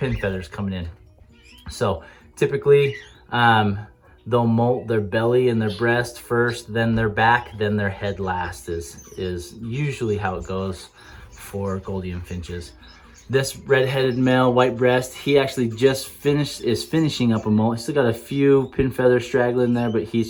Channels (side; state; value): both; identical; correlation 1.00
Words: coming in. So typically, they'll molt their belly and their breast first, then their back, then their head last is usually how it goes for Gouldian finches. This red-headed male, white breast, he actually just is finishing up a molt. He's still got a few pin feathers straggling there, but